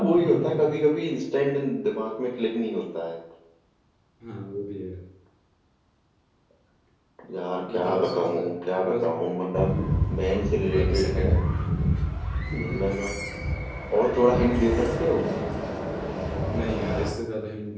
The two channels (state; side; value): identical; both; correlation 1.00